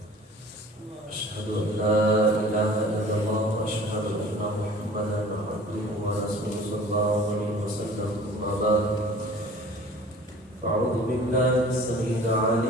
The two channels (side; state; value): both; normal; correlation 0.45